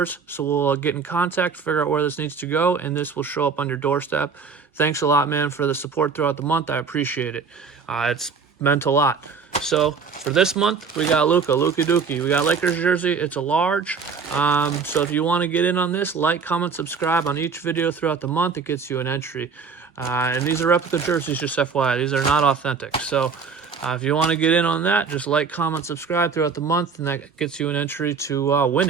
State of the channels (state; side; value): quieter; left; 5.5 dB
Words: So we'll get in contact, figure out where this needs to go, and this will show up on your doorstep. Thanks a lot, man, for the support throughout the month. I appreciate it. It's meant a lot. So for this month, we got Luka Dookie. We got Lakers jersey. It's a large. So if you want to get in on this, like, comment, subscribe on each video throughout the month. It gets you an entry. And these are replica jerseys, just FYI. These are not authentic. So if you want to get in on that, just like, comment, subscribe throughout the month, and that gets you an entry to win